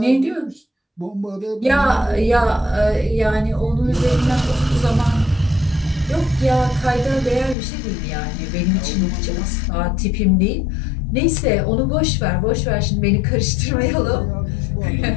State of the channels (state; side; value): drops out; right; at 7.6 s